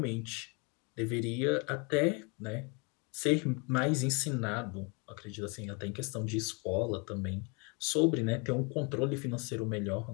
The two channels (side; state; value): right; quieter; 32.3 dB